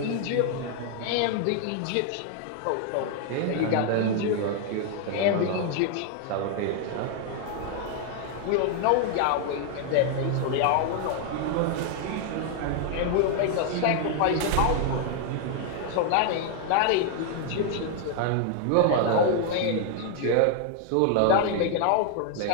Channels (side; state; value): both; different; correlation 0.00